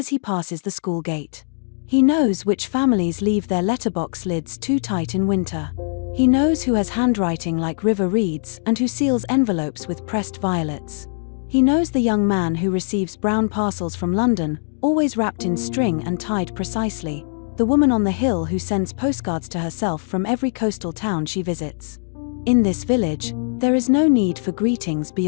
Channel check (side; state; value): right; silent; digital silence